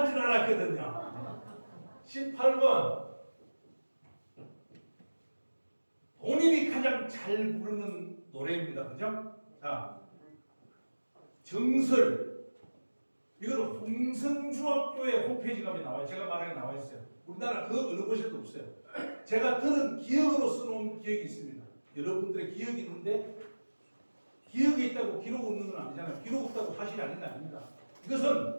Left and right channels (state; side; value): inverted; both; correlation -1.00